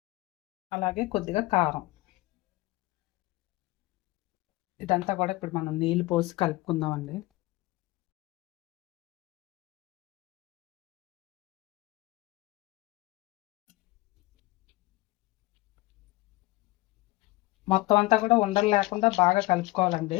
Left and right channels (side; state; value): right; quieter; 20.6 dB